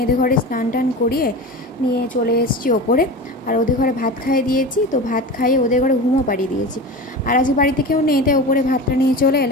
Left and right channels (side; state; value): both; normal; correlation 0.30